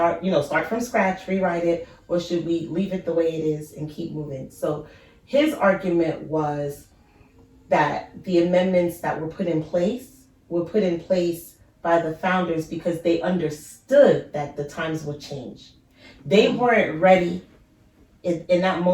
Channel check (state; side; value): identical; both; correlation 1.00